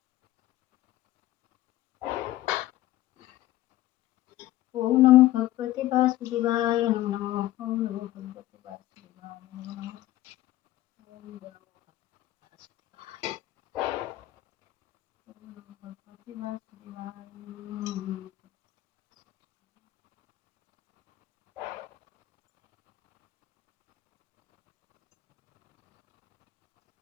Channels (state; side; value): quieter; right; 15.5 dB